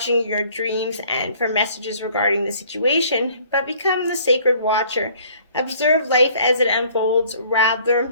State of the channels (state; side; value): inverted; both; correlation -0.57